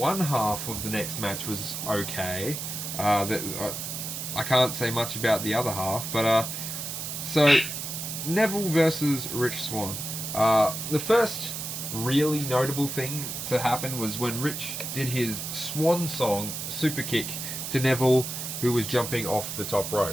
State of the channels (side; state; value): right; noise; hiss, 5 dB below the sound